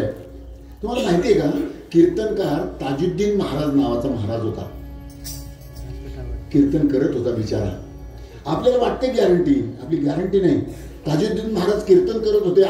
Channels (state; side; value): identical; both; correlation 1.00